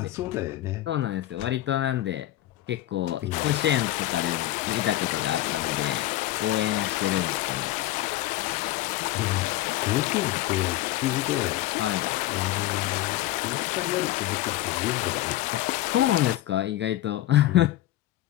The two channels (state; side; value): quieter; right; 15.2 dB